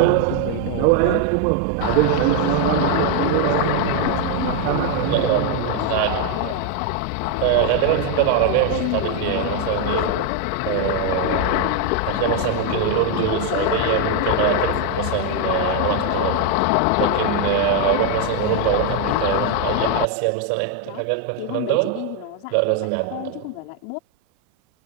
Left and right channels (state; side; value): different; both; correlation 0.01